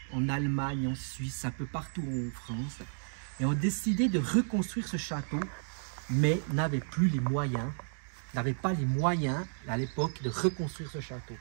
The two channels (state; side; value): silent; left; digital silence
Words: en Allemagne, en Suisse, un peu partout en France, et ont décidé de reconstruire ce château, mais n'avaient pas les moyens à l'époque de reconstruire ce château.